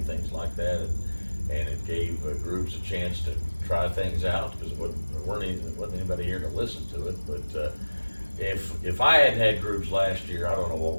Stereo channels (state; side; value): inverted; both; correlation -1.00